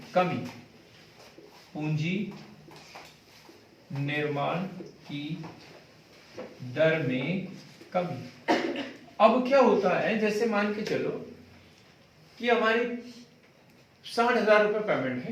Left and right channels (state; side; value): identical; both; correlation 1.00